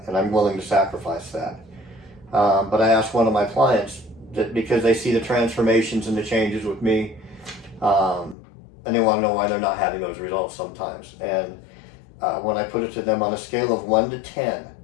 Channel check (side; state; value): right; drops out; at 8.3 s